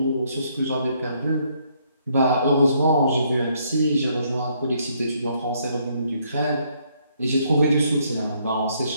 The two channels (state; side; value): inverted; both; correlation -0.70